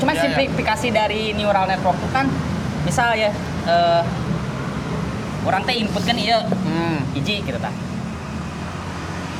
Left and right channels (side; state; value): both; identical; correlation 1.00